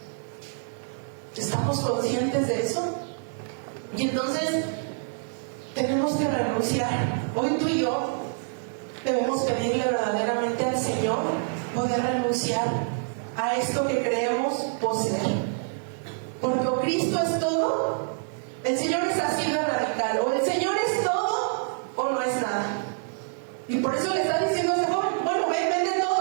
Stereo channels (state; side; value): silent; left; digital silence